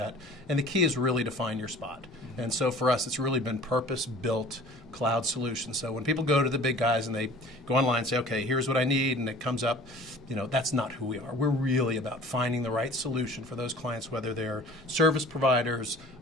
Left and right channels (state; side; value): normal; both; correlation 0.46